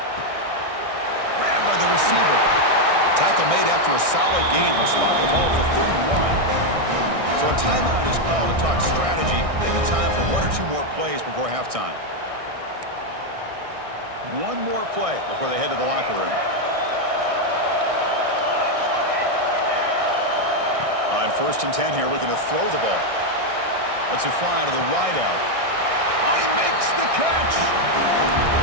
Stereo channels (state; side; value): late; left; 1.6 ms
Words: Grabbed by the receiver. Tackle made after a solid gain. Will spot the ball for 31. So a timeout is called to talk strategy. Maybe time for 1 or 2 more plays before halftime. One more play before they head to the locker room. On 1st and 10 here, looking to throw the ball. Lets it fly to the wideout. Oh, he makes the catch!